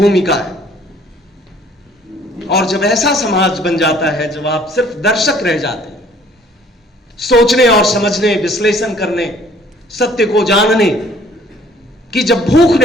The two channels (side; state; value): both; normal; correlation 0.57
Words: है। और जब ऐसा समाज बन जाता है, जब आप सिर्फ दर्शक रह जाते हैं, सोचने और समझने, विश्लेषण करने, सत्य को जानने की जब भूख